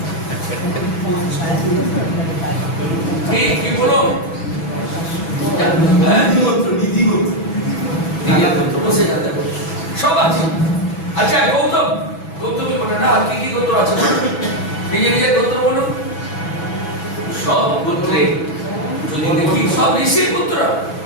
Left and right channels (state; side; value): late; right; 6.1 ms